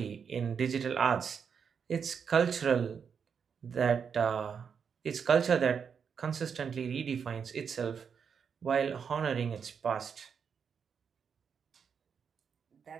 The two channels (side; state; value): left; quieter; 6.7 dB